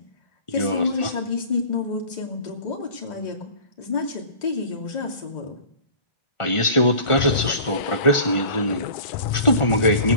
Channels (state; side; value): late; right; 1.4 ms